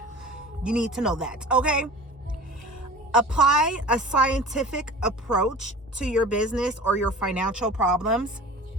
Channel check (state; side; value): normal; both; correlation 0.39